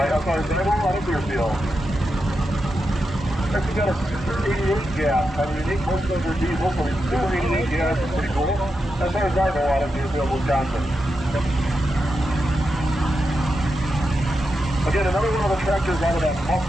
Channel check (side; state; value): both; normal; correlation 0.87